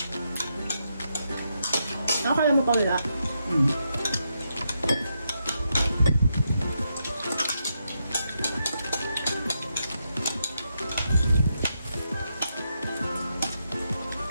Nakakala mo pa wala.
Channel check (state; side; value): inverted; both; correlation -0.82